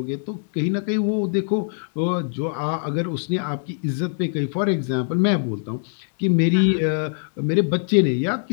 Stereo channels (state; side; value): silent; right; digital silence